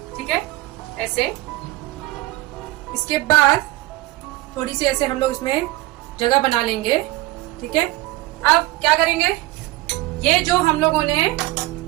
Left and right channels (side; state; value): left; quieter; 18.8 dB